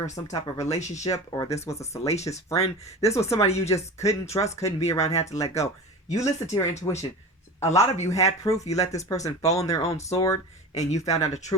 or some type of relationship, or this was a salacious friend. This was somebody you just couldn't trust, couldn't be around, had to let go. You listened to your intuition. A lot of you had proof. You let this person fall on their own sword and you found out the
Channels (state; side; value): normal; both; correlation 0.32